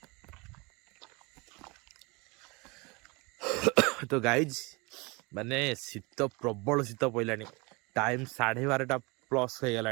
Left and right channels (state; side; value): quieter; left; 26.8 dB